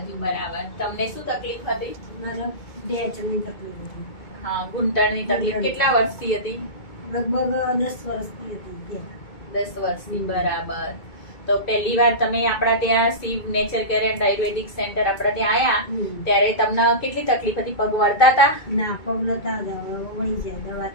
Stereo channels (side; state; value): right; late; 2.2 ms